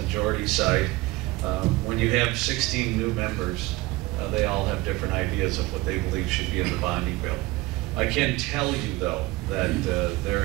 side. When you have 16 new members, they all have different ideas of what they believe should be in the bonding bill. I can tell you, though, that there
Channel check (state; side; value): quieter; left; 20.5 dB